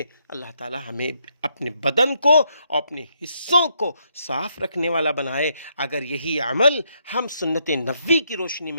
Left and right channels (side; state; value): both; inverted; correlation -0.76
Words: اللہ تعالی ہمیں اپنے بدن کو اور اپنے حصوں کو صاف رکھنے والا بنائے۔ اگر یہی عمل ہم سنت نبوی کی روشنی